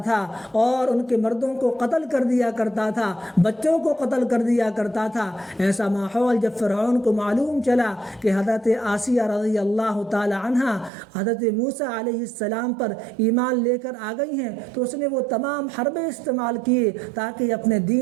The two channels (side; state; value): left; drops out; at 10.9 s